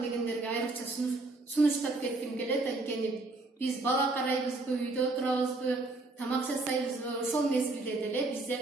дегендерге айрыкча сунуштап кетким келет. Анткени биз бала карайбызбы, үйдө отурабызбы, тамак жасайбызбы, ошол мезгилде деле бизде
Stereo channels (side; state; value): left; quieter; 3.1 dB